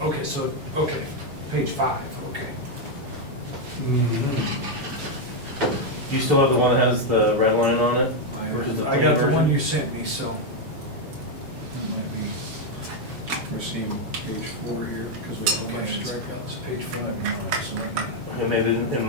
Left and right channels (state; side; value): late; left; 7.2 ms